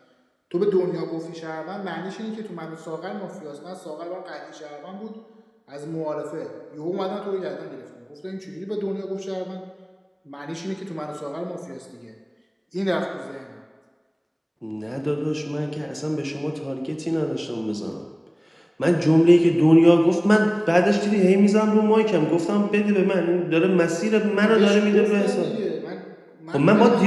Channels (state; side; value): identical; both; correlation 1.00